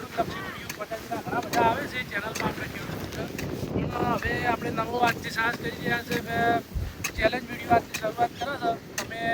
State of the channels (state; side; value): identical; both; correlation 1.00